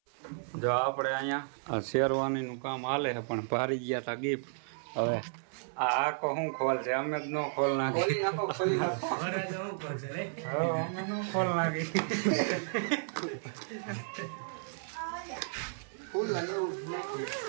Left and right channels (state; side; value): silent; left; 56 dB below the other